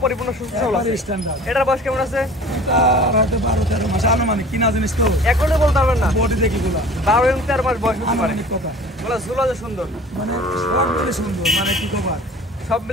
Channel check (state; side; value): normal; both; correlation 0.44